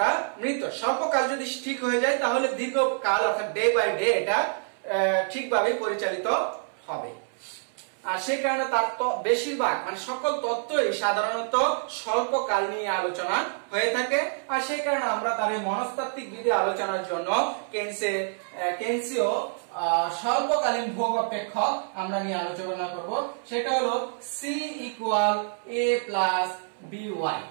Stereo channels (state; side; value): silent; left; 60 dB below the other